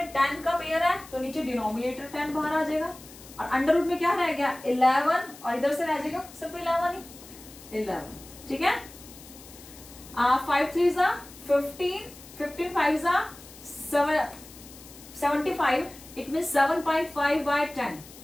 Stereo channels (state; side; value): noise; left; hiss, 19 dB below the sound